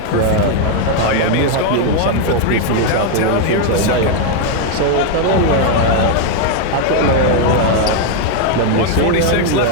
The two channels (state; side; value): different; both; correlation 0.01